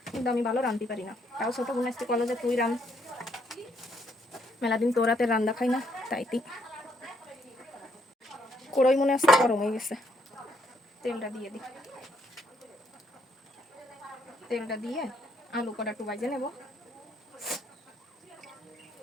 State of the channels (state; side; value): normal; both; correlation 0.72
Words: কিন্তু আমি ভালো রান্ধতে পারি না। তাও ছোটো বোন আসতে বলো যে তুই রান, মেলাদিন তোর রাতে রান্না খাই না, তাইতি কড়াই মনে আসতে গরম হয়ে গেছে। তেলটা দিয়ে দিই, তেলটা দিয়ে আলু কটা একটু ভাজে নেব।